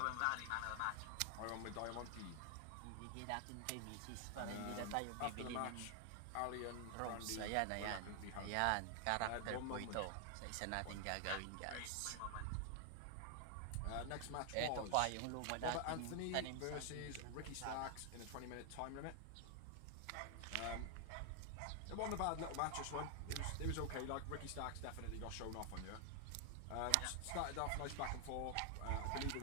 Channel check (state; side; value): different; both; correlation 0.00